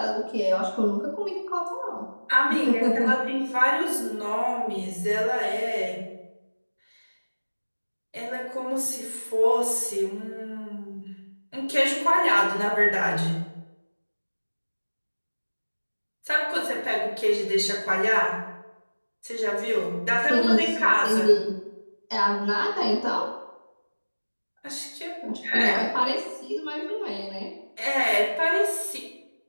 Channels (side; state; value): both; inverted; correlation -1.00